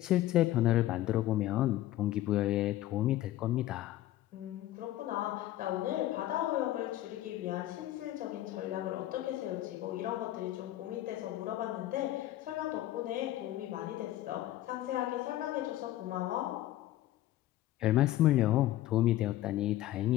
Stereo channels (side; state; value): right; quieter; 14.5 dB